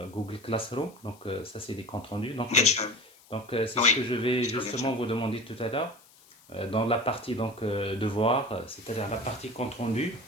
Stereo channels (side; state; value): left; noise; hiss, 26 dB below the sound